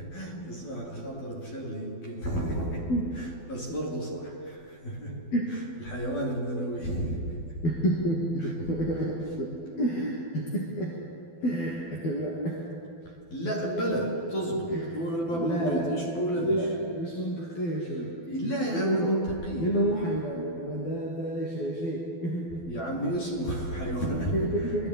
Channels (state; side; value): late; right; 12 ms